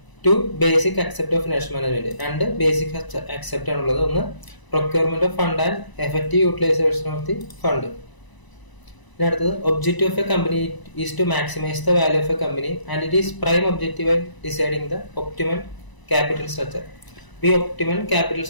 2 basic accept of financial management. 2 basic accept ആണുള്ളത്. ഒന്ന്, procurement of fund and effective utilisation of the fund. പിന്നെ അടുത്തത്, objective of a company is to maximise the value of a company and it is prime objective deciding the optimal capital structure. ഈ optimal capital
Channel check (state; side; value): late; right; 1.0 ms